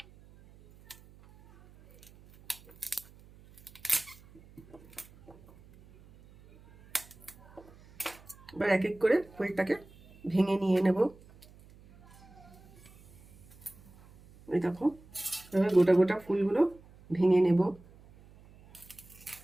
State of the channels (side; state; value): right; noise; hum, 24 dB below the sound